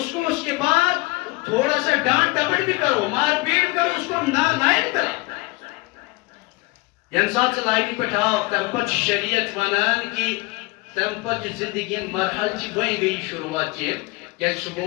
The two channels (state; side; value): quieter; right; 23.9 dB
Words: کو اس کے بعد تھوڑا سا ڈانٹ ٹپٹ بھی کرو مار پیٹ کرو اس کو نائل کرو ین سات سے لائنی پٹھاؤ تم پت شریعت ونان کی تم پت زندگی مرحل چی گوئی گئی شروعات چی کہ